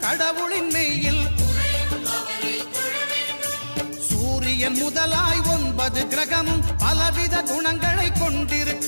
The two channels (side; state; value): both; inverted; correlation -1.00